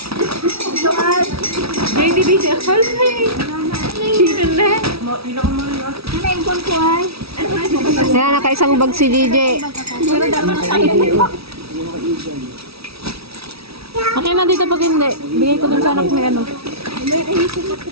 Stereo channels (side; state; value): left; late; 0.76 ms